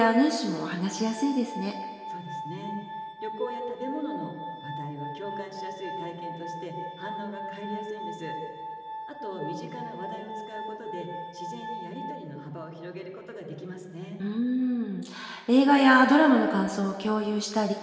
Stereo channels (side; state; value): both; identical; correlation 1.00